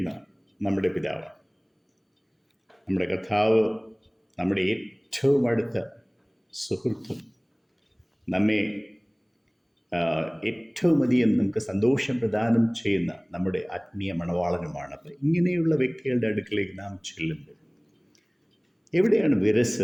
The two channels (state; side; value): identical; both; correlation 1.00